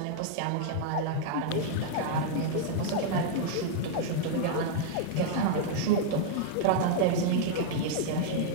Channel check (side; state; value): both; different; correlation -0.01